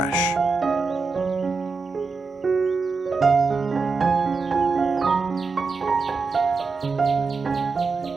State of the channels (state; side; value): quieter; left; 4.4 dB